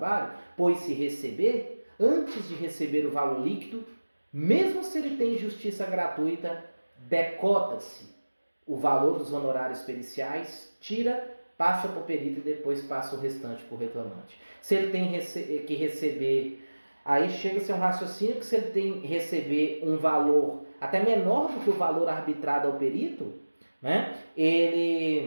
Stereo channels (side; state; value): both; inverted; correlation -1.00